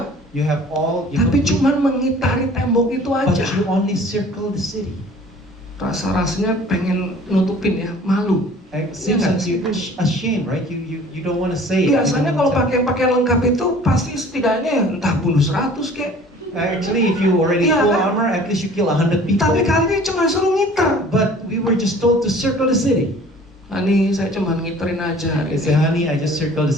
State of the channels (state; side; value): normal; both; correlation 0.49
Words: You have all. tapi cuman mengitari tembok itu But aja. you only circle the city. Rasa-rasanya pengen nutupin ya, malu. It seems Iya that you're ashamed, right? You don't want to say it. Biasanya kalau pakai pakaian lengkap itu pasti setidaknya entah bunuh 100 kek. Actually, if you already Iya, full kan? armor, at least you kill 100 people. Tapi kali ini cuma suruh ngiter. But we were just told to circle the city. Hani, saya cuma ngiterin aja hari I ini. said, "Honey, I just circled the